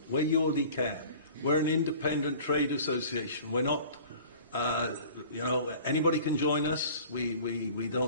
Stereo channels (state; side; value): inverted; both; correlation -0.45